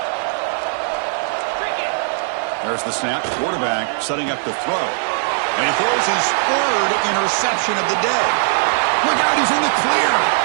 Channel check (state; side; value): silent; left; digital silence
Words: There's the snap. Quarterback setting up the throw. And he throws his 3rd interception of the day. Look out, he's in the clear.